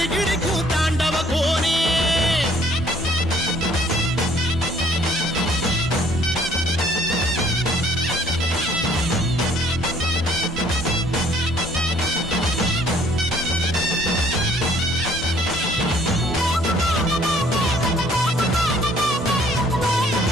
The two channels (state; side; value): normal; both; correlation 0.60